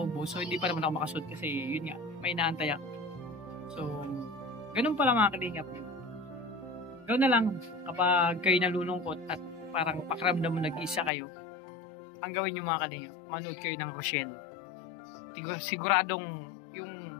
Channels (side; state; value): right; drops out; at 11.1 s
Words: so hindi pa naman ako makasud kasi yun nga, may inaantay ako. So, ganun pala mga kalingap. Gawin na lang kapag kayo nalulungkot at parang pakiramdam mo nag-iisa kayo, ang gawin nyo mga kalingap, manood kayo ng Rochelle. Siguradong yung